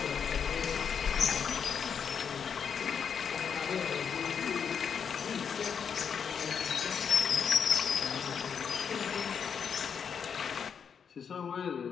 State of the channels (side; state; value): right; quieter; 7.0 dB